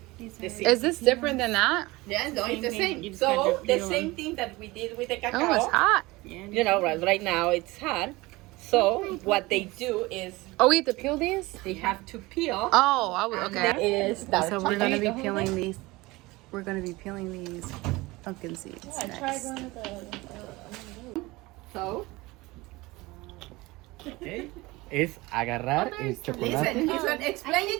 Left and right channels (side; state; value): left; quieter; 21.4 dB